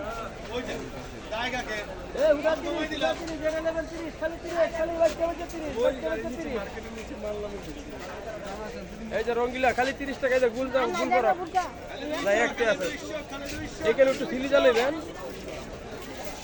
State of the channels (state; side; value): identical; both; correlation 1.00